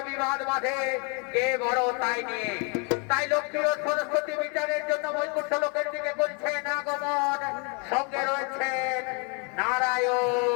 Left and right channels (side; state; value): right; quieter; 35.0 dB